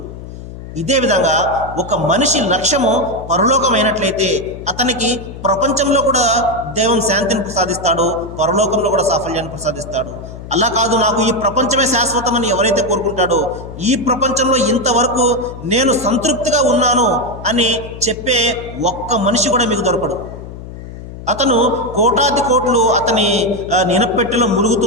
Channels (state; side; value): noise; left; hum, 12 dB below the sound